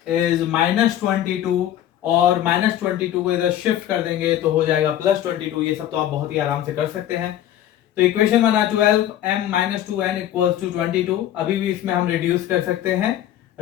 is minus 22 और माइनस 22 को इधर शिफ्ट कर देंगे तो हो जाएगा प्लस 22। ये सब तो आप बहुत ही आराम से कर सकते हैं। तो इक्वेशन बना 12m minus 2n equals to 22। अभी भी इसमें हम रिड्यूस कर सकते हैं,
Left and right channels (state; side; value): quieter; right; 12.0 dB